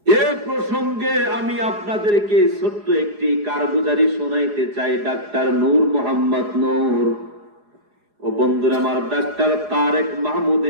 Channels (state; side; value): late; left; 4.8 ms